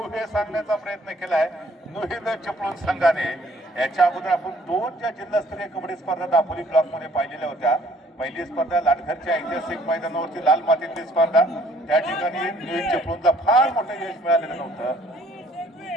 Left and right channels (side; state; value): both; normal; correlation 0.61